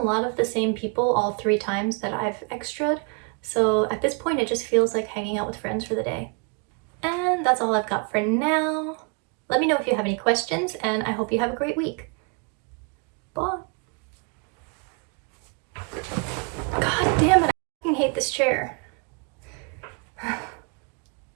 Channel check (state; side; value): quieter; left; 34.6 dB